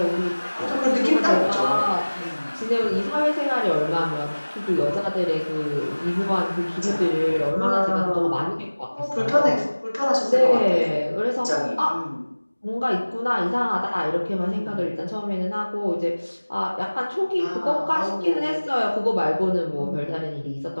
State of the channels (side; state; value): both; inverted; correlation -1.00